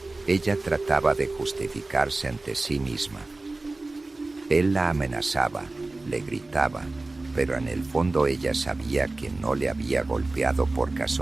Ella trataba de justificarse ante sí misma. Él la amenazaba, le gritaba, pero en el fondo ella sabía que no le había golpeado por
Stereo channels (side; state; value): left; quieter; 3.2 dB